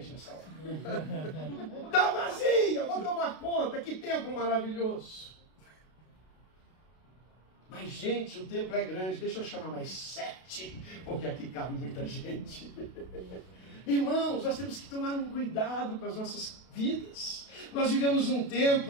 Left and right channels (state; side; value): late; right; 32 ms